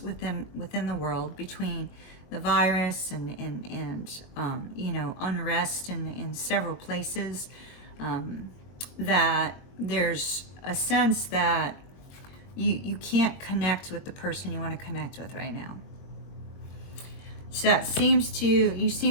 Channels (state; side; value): late; right; 22 ms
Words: within the world, between the virus and you know, unrest in several places. That there's a sense that you can't connect with the person you want to connect with right now. So you